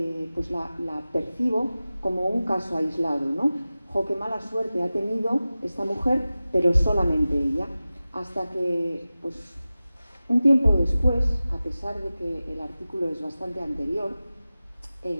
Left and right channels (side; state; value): both; inverted; correlation -0.96